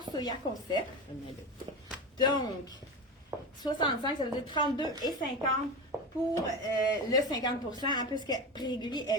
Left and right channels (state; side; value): normal; both; correlation 0.23